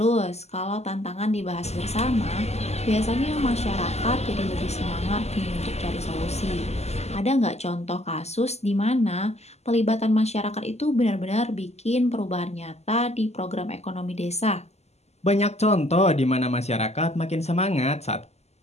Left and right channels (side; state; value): right; late; 0.31 ms